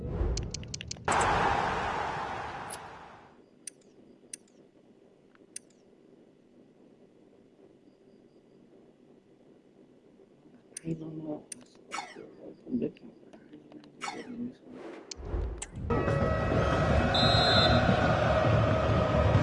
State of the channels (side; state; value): both; identical; correlation 1.00